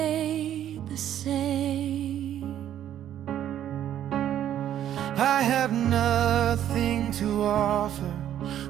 the same. I have nothing to offer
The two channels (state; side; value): quieter; left; 11.0 dB